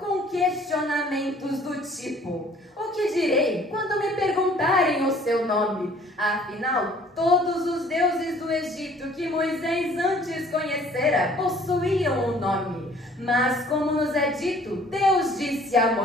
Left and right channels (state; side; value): normal; both; correlation 0.55